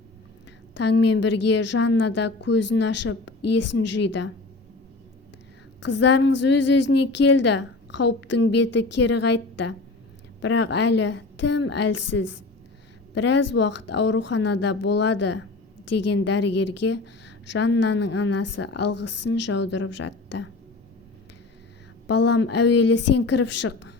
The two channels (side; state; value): right; quieter; 3.3 dB